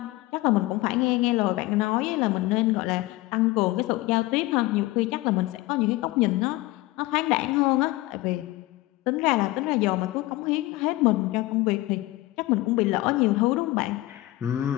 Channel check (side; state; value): right; quieter; 18.8 dB